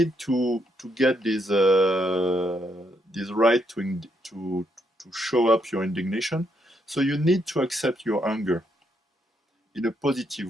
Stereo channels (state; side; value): normal; both; correlation 0.76